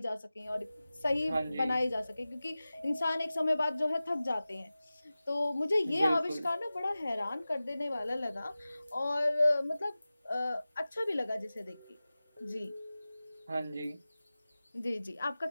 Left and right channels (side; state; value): both; inverted; correlation -0.97